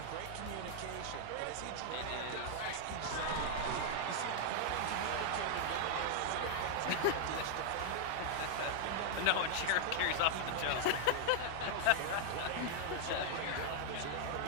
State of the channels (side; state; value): both; different; correlation -0.01